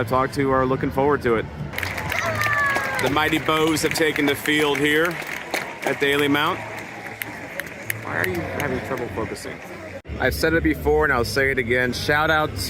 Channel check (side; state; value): both; identical; correlation 1.00